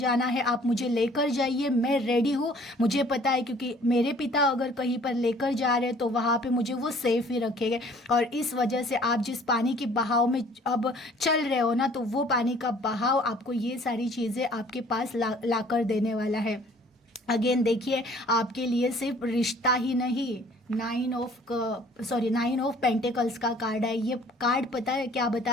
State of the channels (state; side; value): normal; both; correlation 0.55